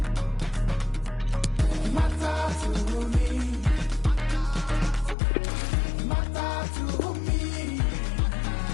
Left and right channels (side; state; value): right; drops out; at 5.2 s